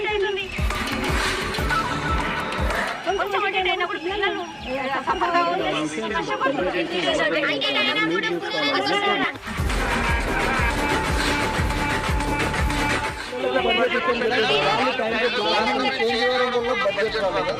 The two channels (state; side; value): identical; both; correlation 1.00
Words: అవుతుంది. కొంచెం అటెండ్ అయినప్పుడు పిల్లలు సఫర్ కావద్దని కష్టపడుతున్నారు.